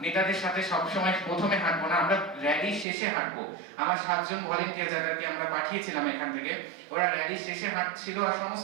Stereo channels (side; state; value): left; drops out; at 2.9 s